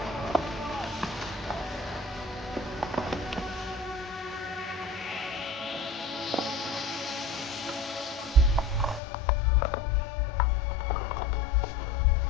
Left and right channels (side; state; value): right; drops out; at 9.0 s